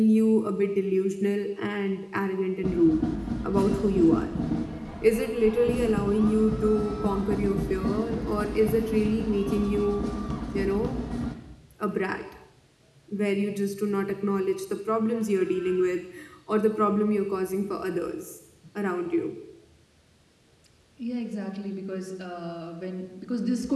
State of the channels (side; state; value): both; identical; correlation 1.00